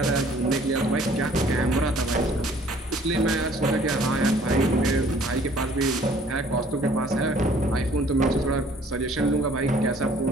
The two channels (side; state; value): both; normal; correlation 0.56